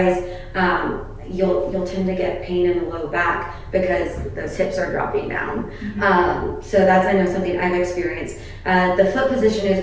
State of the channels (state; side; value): identical; both; correlation 1.00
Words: you'll tend to get pain in the low back because those hips are dropping down. So that's, I know, something I've experienced. The foot position is